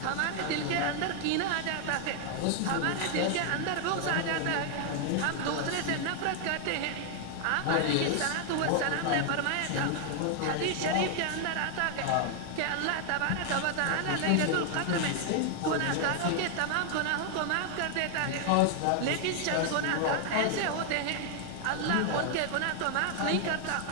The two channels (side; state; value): both; different; correlation 0.00